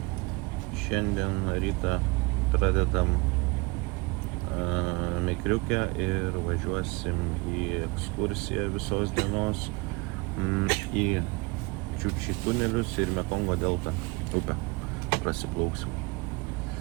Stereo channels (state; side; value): quieter; left; 26.2 dB